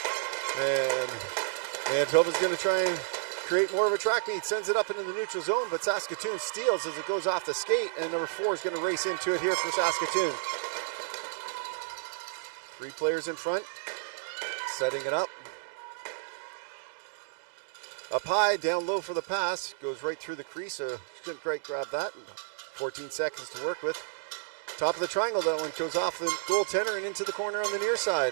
And Manitoba's going to try and create more of a track meet. Sends it up into the neutral zone, but Saskatoon steals as it goes off the skate, and number 4 is going to race into it here for Saskatoon. 3 players in front, setting it up. Up high, down low for the pass. Goes right through the crease, so couldn't quite grab that. 14 seconds to work with. Top of the triangle, that one goes off the goaltender and into the corner on the near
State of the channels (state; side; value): silent; left; digital silence